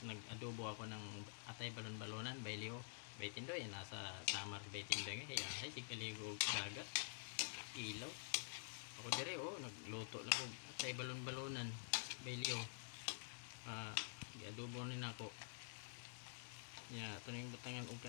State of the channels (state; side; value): silent; right; digital silence